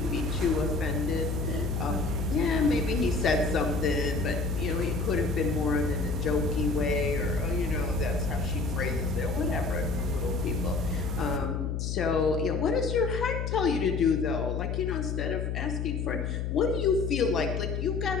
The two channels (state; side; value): noise; left; hum, 1 dB below the sound